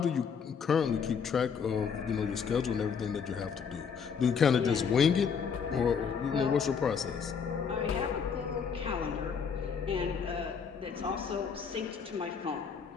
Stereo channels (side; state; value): right; quieter; 6.4 dB